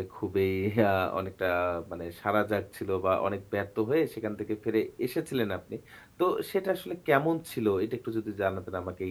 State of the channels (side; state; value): both; identical; correlation 1.00